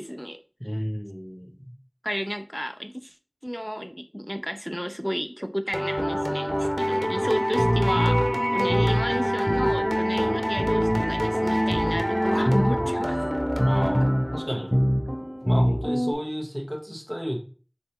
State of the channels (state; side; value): identical; both; correlation 1.00